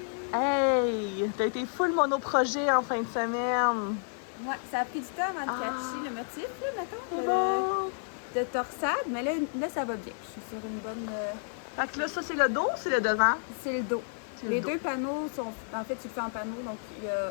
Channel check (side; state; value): right; silent; digital silence